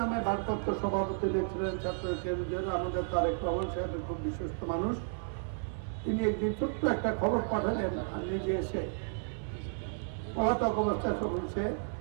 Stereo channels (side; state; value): left; silent; 56 dB below the other